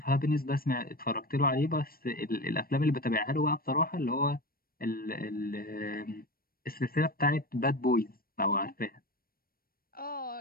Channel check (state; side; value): late; right; 0.43 ms